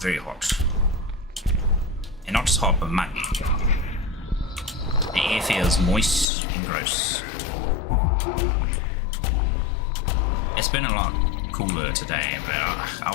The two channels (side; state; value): right; drops out; at 6.2 s